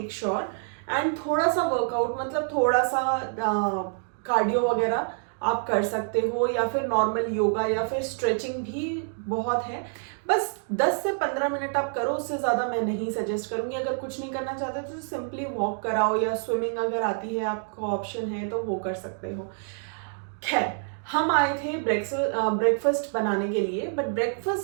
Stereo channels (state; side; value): silent; left; 60 dB below the other